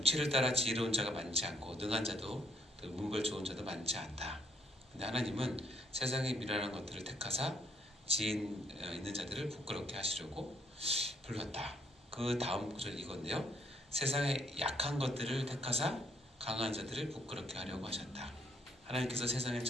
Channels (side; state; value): both; normal; correlation 0.69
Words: 따라 지혜로운 자가 많지 않고 능한 자도 문벌 좋은 자도 많지 않다. 근데 하나님은 세상의 미련한 것들을 택하사 지혜 있는 자들을 부끄럽게 하시려고 불렀다. 그 다음 구절 이건데요. 세상의 약한 것들을 택하사 강한 자들을 부끄럽게 하려고 하셨다. 하나님께서 세상의